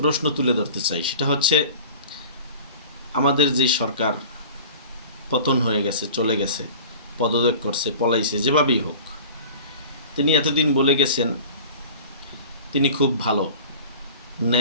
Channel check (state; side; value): inverted; both; correlation -0.41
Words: তুলে ধরতে চাই। সেটা হচ্ছে, আমাদের যে সরকার পতন হয়ে গেছে, চলে গেছে, পদত্যাগ করছে, পলাইছে, যেভাবেই হোক, তিনি এতদিন বলে গেছেন তিনি খুব ভালো,